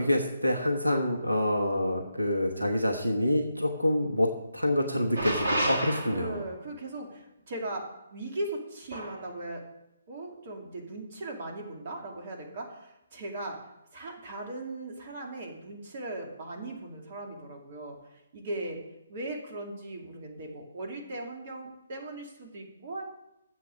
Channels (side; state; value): both; inverted; correlation -0.82